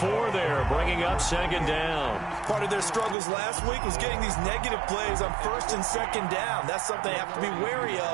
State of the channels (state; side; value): drops out; left; at 3.2 s